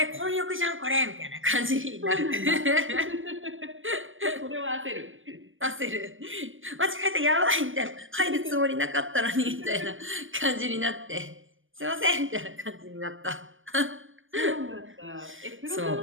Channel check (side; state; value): left; late; 0.58 ms